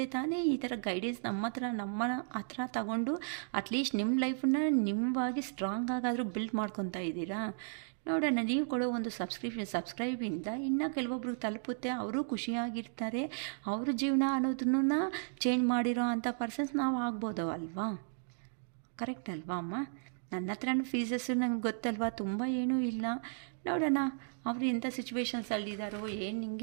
ತಾನೇ ಈ ಥರ ಗೈಡೆನ್ಸ್ ನಮ್ಮ ಹತ್ರ ತಗೊಂಡು ಅಟ್ಲೀಸ್ಟ್ ನಿಮ್ಮ ಲೈಫನ್ನ ನಿಮ್ಮವಾಗಿ ಸ್ಟ್ರಾಂಗ್ ಆಗಾದರೂ ಬಿಲ್ಡ್ ಮಾಡ್ಕೊತಾ ಇದ್ದೀರಾ. ನೋಡೋಣ, ನೀವು ಕೊಡೋ ಒಂದು ಸಬ್ಸ್ಕ್ರೈಬಿಂದ ಇನ್ನೂ ಕೆಲವೊಬ್ರಿಗೆ ತಲುಪುತ್ತೆ, ಅವರು ಖುಷಿಯಾಗಿರ್ತಾರೆ. ಅವ್ರ ಜೀವನ ಅನ್ನೋದನ್ನ ಚೇಂಜ್ ಮಾಡಿರೋ ಅಂಥ ಪರ್ಸನ್ಸ್ ನಾವು ಆಗ್ಬೋದು ಅಲ್ವಾ. ಕರೆಕ್ಟ್ ಅಲ್ವಾ ಅಮ್ಮ. ನನ್ನ ಹತ್ರನೂ ಫೀಸಸ್ಸು ನಂಗೆ ಗೊತ್ತಲ್ವಾ, ತುಂಬ ಏನೂ ಇಲ್ಲ. ನೋಡೋಣ ಅವರು ಎಂಥ ಸಿಚುವೇಶನ್ಸಲ್ಲಿದ್ದಾರೋ, ಏನು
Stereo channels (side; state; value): left; silent; digital silence